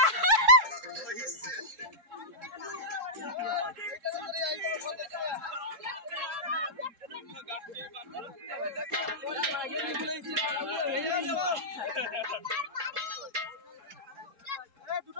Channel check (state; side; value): late; left; 3.7 ms